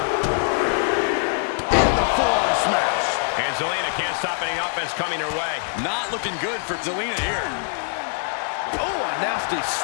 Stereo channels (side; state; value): right; silent; digital silence